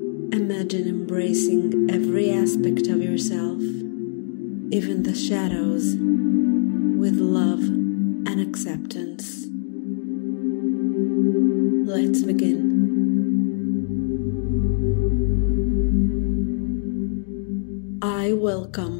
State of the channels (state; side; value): silent; right; 64 dB below the other